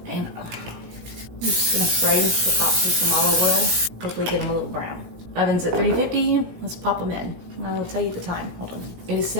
And I'm just gonna spray the tops with some olive oil. Hopefully get them a little brown. Oven's at 350. Let's pop them in. I'll tell you the time. Hold on. It is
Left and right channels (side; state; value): left; late; 17 ms